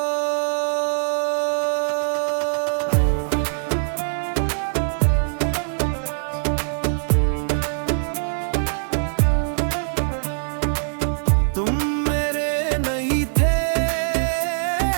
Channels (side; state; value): left; silent; 64 dB below the other